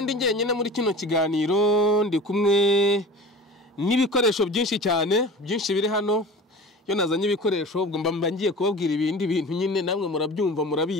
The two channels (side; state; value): both; normal; correlation 0.38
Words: ndi njyenyine muri kino kiganiro, ndi kumwe n'ibikoresho byinshi cyane byinshi biri hano. Yo nazanye ibikoresho ubwo mba ngiye kubabwira ibindi bintu nyine namwe murabyumva